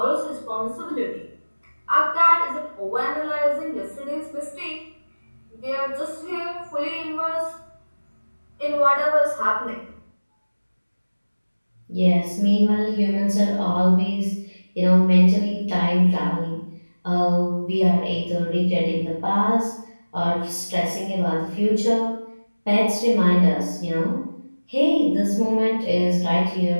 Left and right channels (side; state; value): both; inverted; correlation -1.00